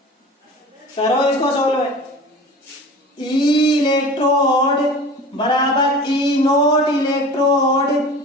करो इसको सोल्व। ई इलेक्ट्रोड बराबर ई नोट इलेक्ट्रोड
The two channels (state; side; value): normal; both; correlation 0.38